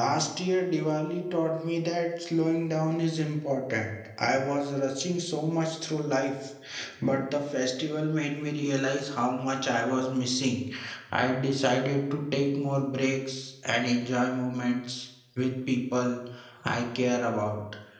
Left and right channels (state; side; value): identical; both; correlation 1.00